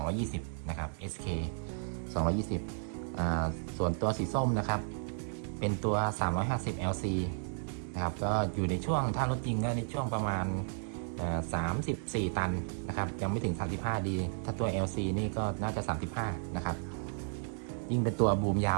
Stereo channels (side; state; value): left; silent; 55 dB below the other